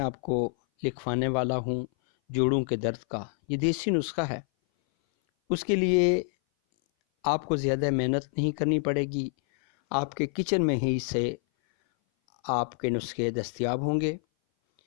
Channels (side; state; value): right; silent; 58 dB below the other